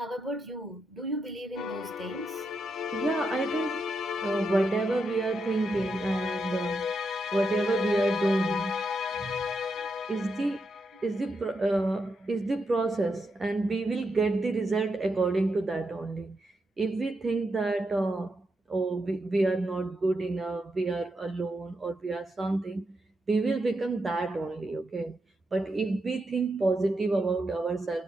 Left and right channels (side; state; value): both; normal; correlation 0.84